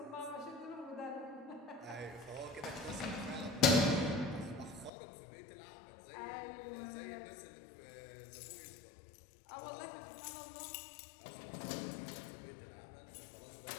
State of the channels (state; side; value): drops out; right; at 4.9 s